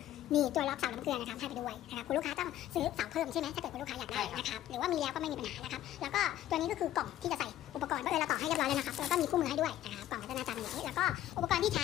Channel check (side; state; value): right; quieter; 13.0 dB